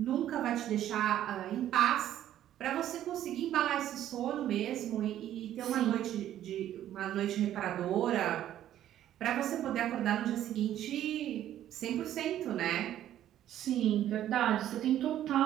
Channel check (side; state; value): left; quieter; 11.9 dB